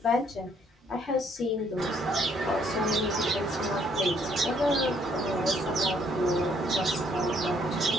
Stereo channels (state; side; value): normal; both; correlation 0.66